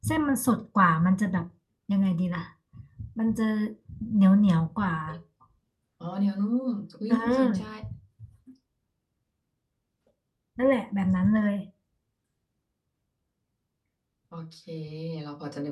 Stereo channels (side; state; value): both; identical; correlation 1.00